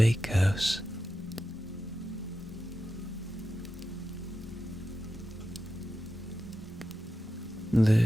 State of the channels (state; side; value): normal; both; correlation 0.90